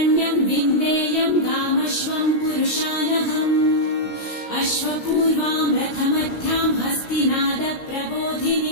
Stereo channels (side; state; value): right; late; 17 ms